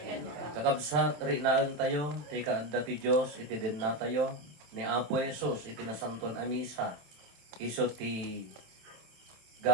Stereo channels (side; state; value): left; late; 27 ms